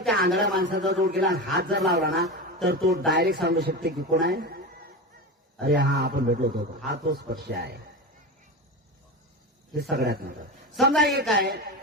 आंधळ्या माणसाचा जोड केला, हात जर लावला ना, तर तो डायरेक्ट सांगू शकते की कोण आहे. अरे हा आपण भेटलो होतो, हा तो स्पर्श आहे. हे सगळ्यात मोठं. समजा एक आहे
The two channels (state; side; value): normal; both; correlation 0.22